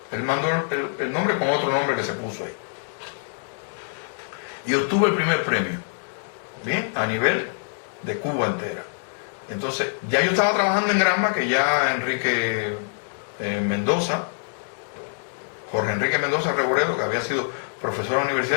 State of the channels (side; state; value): right; silent; digital silence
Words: Él mandó el nombre con otro nombre que se puso ahí. Y obtuvo el primer premio, bien, a nivel de Cuba entera. Entonces, ya yo estaba trabajando en Granma, que ya Enrique Mendoza, Jorge Enrique Mendoza Reboredo, que había sido profesor de la